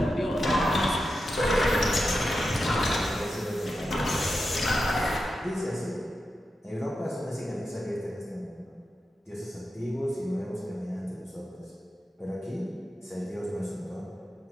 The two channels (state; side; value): normal; both; correlation 0.89